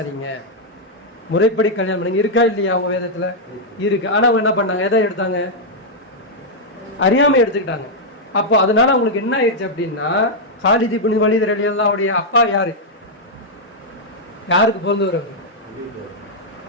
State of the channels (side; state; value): both; normal; correlation -0.04